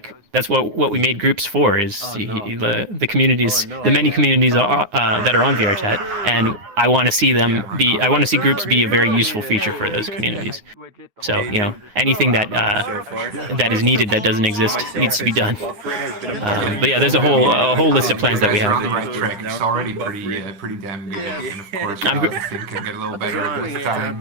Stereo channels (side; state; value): left; late; 9.6 ms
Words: that's what we made groups for is the communities, the many communities that are on VRchat, and I want to see groups be a very useful feature for those communities. So anything that is needed that doesn't exist needs to be done. But yeah, there's a whole list of plans that we have. It's already pretty damn good, and of course I think can get a little better with